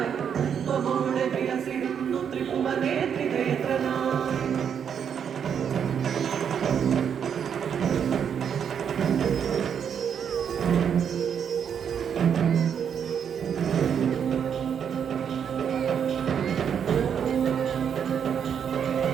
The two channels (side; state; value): left; quieter; 7.8 dB